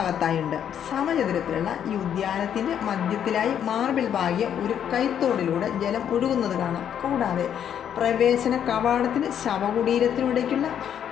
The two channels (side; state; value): right; quieter; 9.2 dB